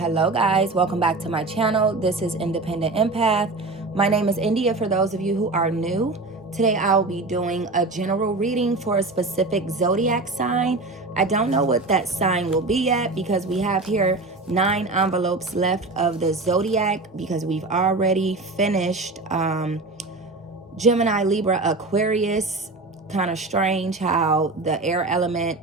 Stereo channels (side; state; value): left; quieter; 3.3 dB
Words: guys, welcome back to my channel. This is Independent Empath. My name is India for those of you who are new. Today I'll be doing a general reading for a specific zodiac sign. I don't know what that sign will be yet because we have here 9 envelopes left of the zodiac because we've already finished Gemini, Libra, Aquarius. Kind of strange how the air element